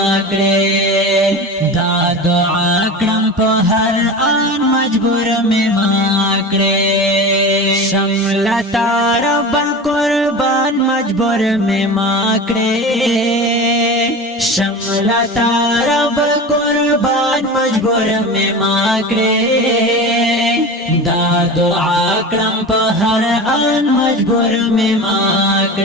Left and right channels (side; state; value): both; normal; correlation 0.30